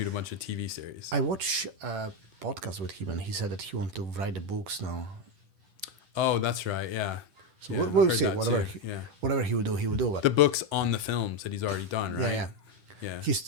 a bunch of TV series. I watched a podcast with him, and he said that he wants to write the books now. Oh, that's right. Yeah. So yeah, we'll see. Whatever he will do, he will do. But the books on the films that he's already done, right? Yeah.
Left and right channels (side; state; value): left; late; 10 ms